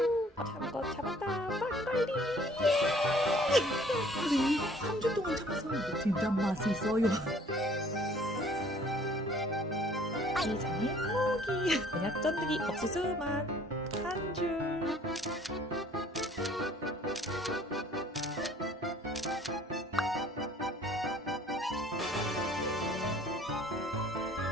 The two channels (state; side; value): normal; both; correlation 0.55